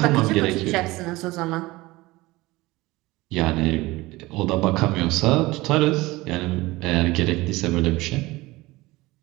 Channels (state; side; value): quieter; left; 20.4 dB